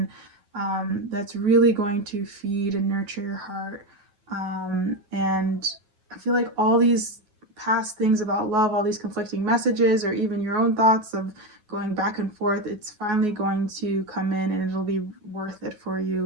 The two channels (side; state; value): left; late; 9.5 ms